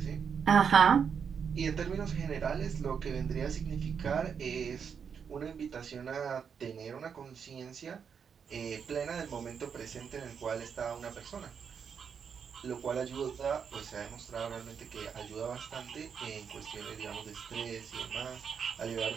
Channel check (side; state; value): left; quieter; 6.8 dB